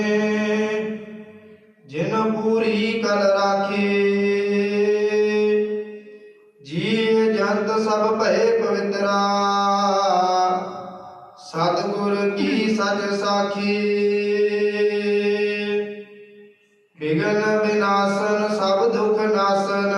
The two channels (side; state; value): both; identical; correlation 1.00